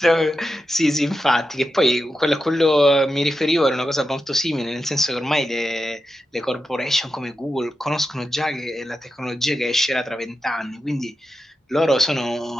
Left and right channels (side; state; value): both; normal; correlation 0.89